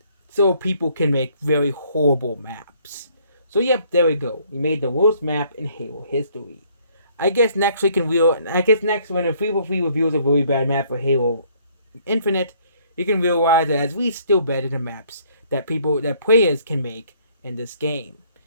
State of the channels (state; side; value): inverted; both; correlation -0.63